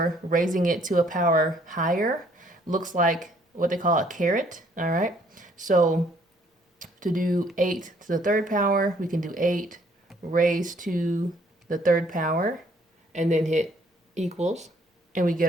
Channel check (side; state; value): both; normal; correlation 0.63